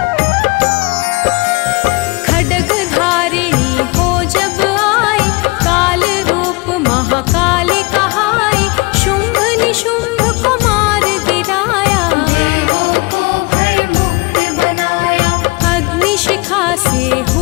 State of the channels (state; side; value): quieter; right; 25.6 dB